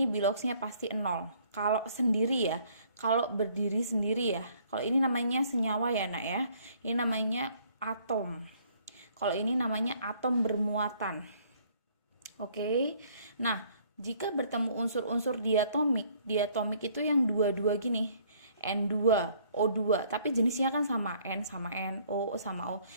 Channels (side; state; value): both; inverted; correlation -0.61